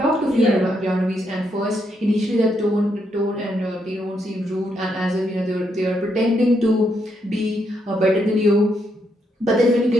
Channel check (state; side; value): normal; both; correlation 0.78